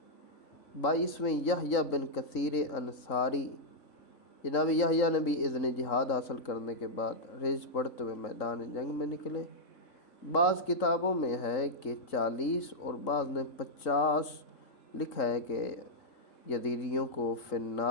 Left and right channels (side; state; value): right; late; 3.8 ms